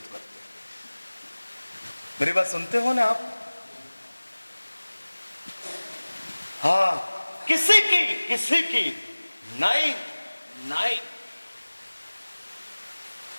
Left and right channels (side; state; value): both; inverted; correlation -1.00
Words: करते हैं। मेरी बात सुनते हो ना आप? हाँ, किसी की नहीं नहीं।